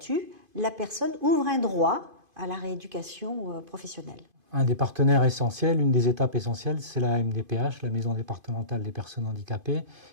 la personne ouvre un droit à la rééducation professionnelle. Un des partenaires essentiels, une des étapes essentielles, c'est la MDPH, la Maison départementale des personnes handicapées,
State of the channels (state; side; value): late; left; 2.5 ms